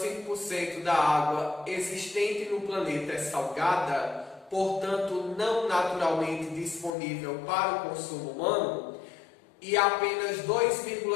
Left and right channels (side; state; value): right; drops out; at 7.0 s